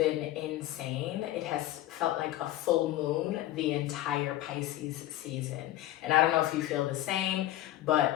insane. It has felt like a full moon the entire Pisces season. And I don't know if you feel the same,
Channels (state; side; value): quieter; right; 14.7 dB